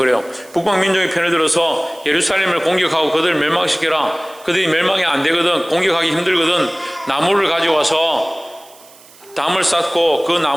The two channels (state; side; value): noise; right; hiss, 24 dB below the sound